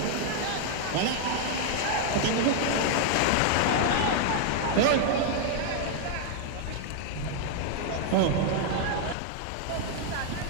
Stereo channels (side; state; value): both; different; correlation 0.00